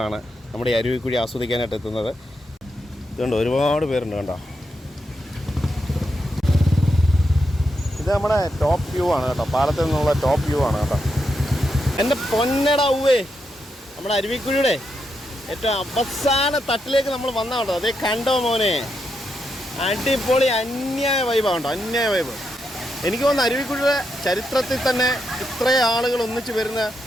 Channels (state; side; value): normal; both; correlation 0.83